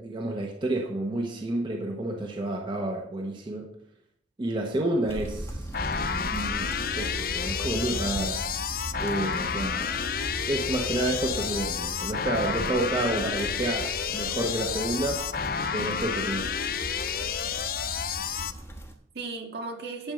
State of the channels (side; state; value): both; normal; correlation 0.36